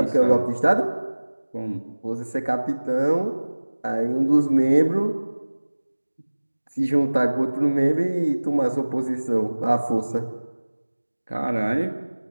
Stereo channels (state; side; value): inverted; both; correlation -1.00